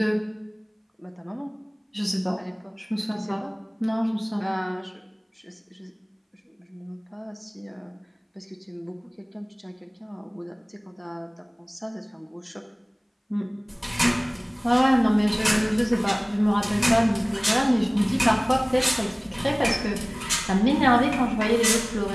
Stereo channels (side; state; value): both; identical; correlation 1.00